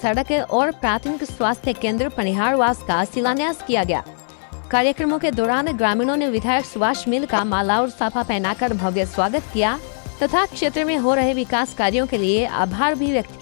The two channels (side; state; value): right; silent; 63 dB below the other